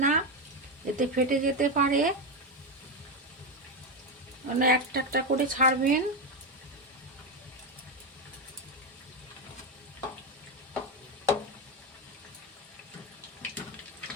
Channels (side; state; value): both; normal; correlation 0.10